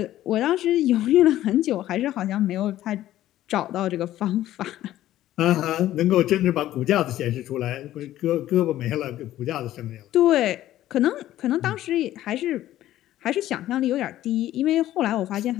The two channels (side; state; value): right; quieter; 13.7 dB